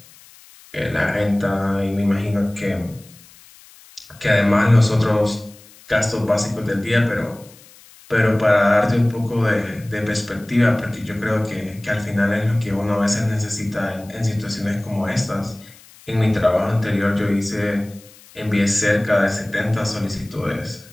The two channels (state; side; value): noise; left; hiss, 24 dB below the sound